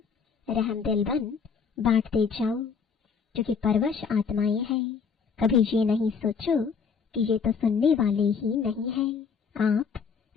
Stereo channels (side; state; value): right; quieter; 5.9 dB